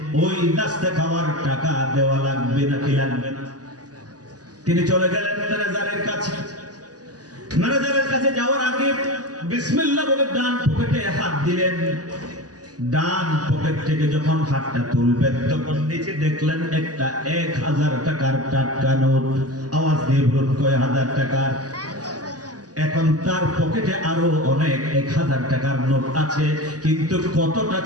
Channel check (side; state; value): left; late; 0.68 ms